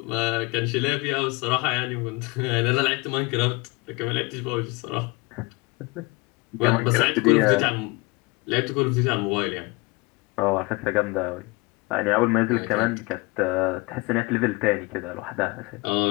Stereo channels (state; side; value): quieter; right; 24.9 dB